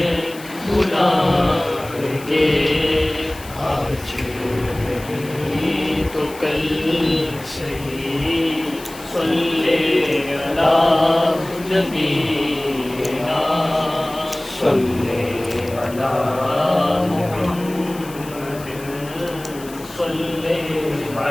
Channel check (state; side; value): noise; left; hiss, 18 dB below the sound